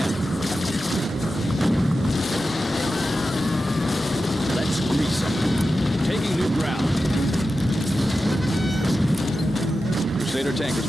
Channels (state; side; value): normal; both; correlation 0.92